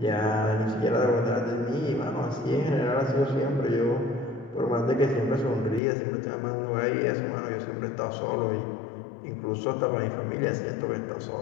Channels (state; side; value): drops out; right; at 5.8 s